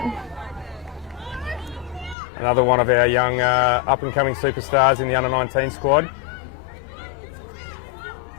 another one of our young up-and-coming superstars in the under-19 squad.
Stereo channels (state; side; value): drops out; right; at 2.1 s